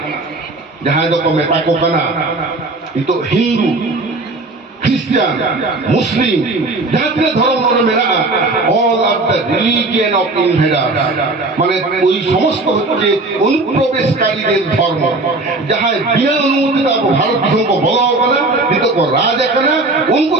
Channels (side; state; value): left; quieter; 3.1 dB